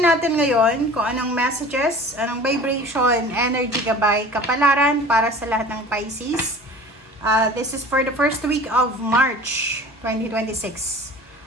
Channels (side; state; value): both; normal; correlation 0.42